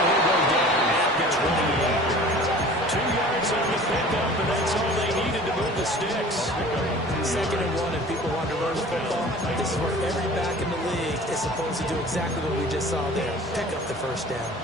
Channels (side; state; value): both; normal; correlation 0.44